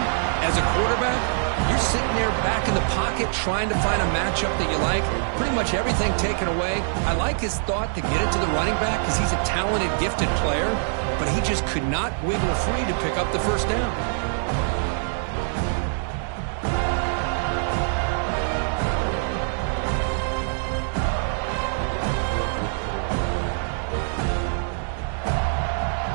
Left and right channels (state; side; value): silent; left; digital silence